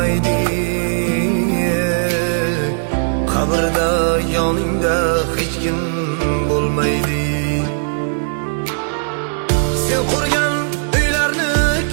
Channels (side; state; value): left; silent; digital silence